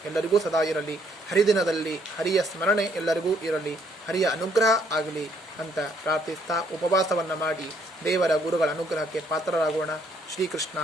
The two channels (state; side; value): normal; both; correlation 0.68